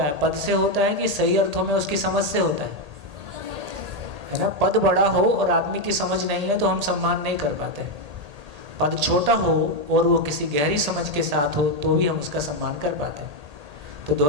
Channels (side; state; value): left; late; 1.8 ms